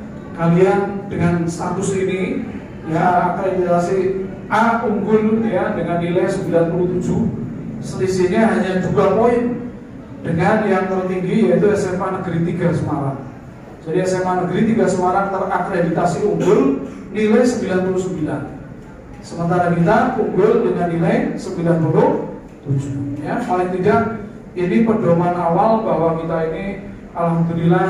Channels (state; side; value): identical; both; correlation 1.00